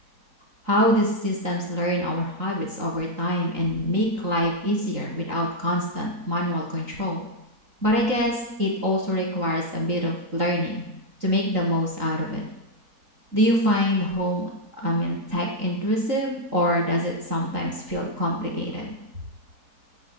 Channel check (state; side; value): late; left; 3.9 ms